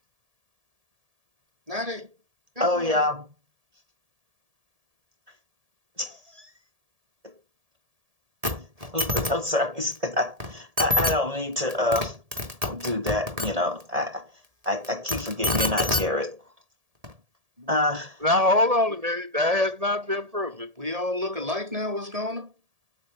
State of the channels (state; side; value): late; left; 1.7 ms